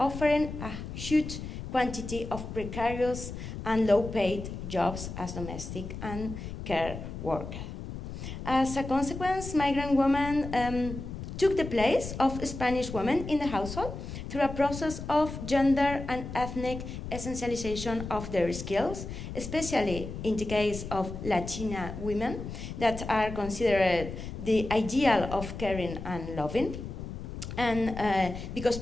a huge quantity of precarious and low-paid jobs as domestic and care workers. As a consequence, migrant women took the place of Spanish women in the household through a process of gender and ethnic essentialization of their skills, especially in the case of Latina women that are considered the ideal of caring and loving. And because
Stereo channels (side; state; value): left; noise; rumble, 8 dB below the sound